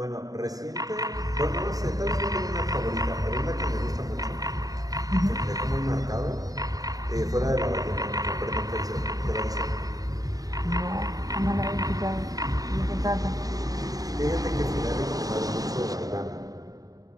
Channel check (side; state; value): left; late; 0.18 ms